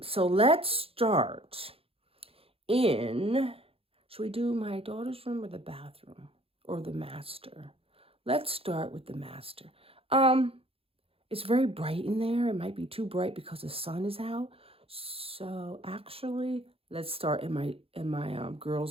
let's start should we do my daughter's room or the bathroom or the master? Let's start with the master. It's very bright in there. It might be too bright because the sun is out. So actually, let's start in my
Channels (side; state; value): left; late; 0.27 ms